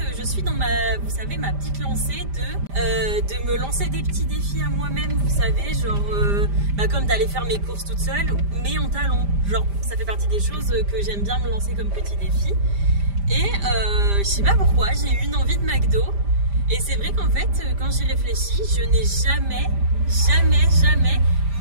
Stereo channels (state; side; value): late; left; 5.0 ms